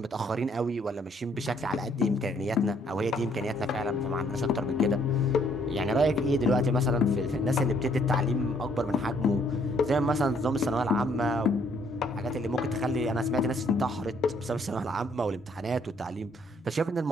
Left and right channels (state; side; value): normal; both; correlation 0.66